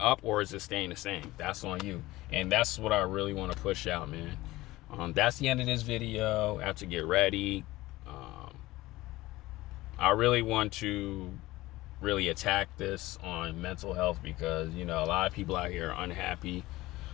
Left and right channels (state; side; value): quieter; right; 18.3 dB